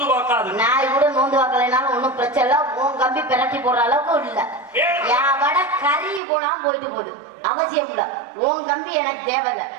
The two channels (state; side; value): drops out; left; at 6.2 s